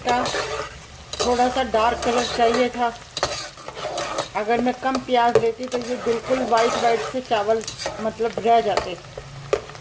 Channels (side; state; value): both; identical; correlation 1.00